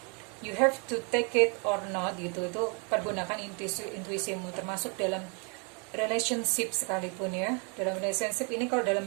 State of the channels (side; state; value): left; quieter; 35.5 dB